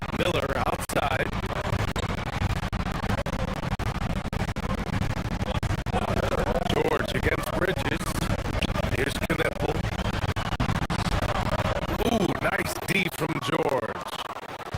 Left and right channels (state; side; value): identical; both; correlation 1.00